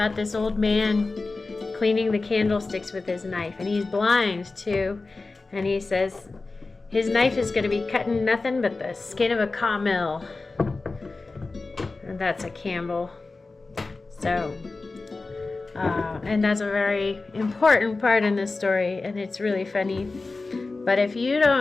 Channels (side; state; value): right; quieter; 3.6 dB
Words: this old man cleaning the candlesticks with his knife, and he's blind too, and he says his knife is going to be cutting nothing but the skin of a camel, and that's a Campbell. So and that's a very important part in this story, and it's really funny. But if you